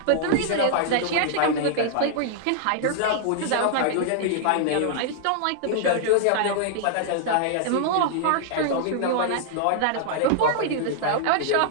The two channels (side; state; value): both; different; correlation -0.01